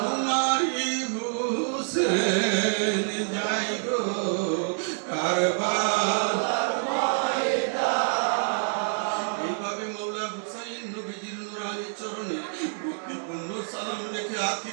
হুসেন যাই গো কারবালার ময়দান। এইভাবে মৌলা হুসাইন নবীজির নূরানি চরণে ভক্তিপূর্ণ সালাম রেখে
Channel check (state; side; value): silent; left; 60 dB below the other